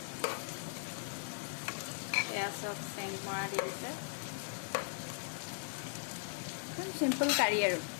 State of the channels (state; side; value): silent; right; 52 dB below the other